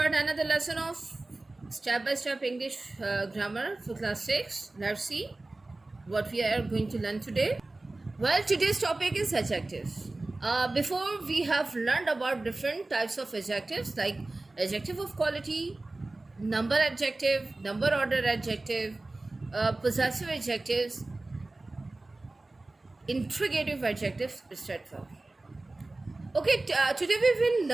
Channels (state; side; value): quieter; left; 3.0 dB